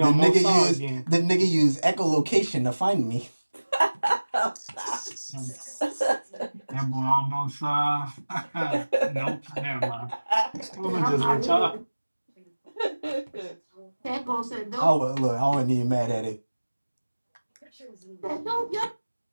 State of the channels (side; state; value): both; inverted; correlation -1.00